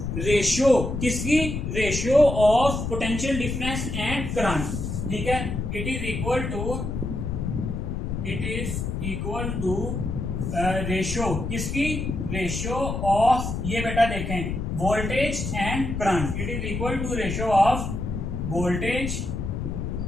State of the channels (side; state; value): left; noise; rumble, 3 dB below the sound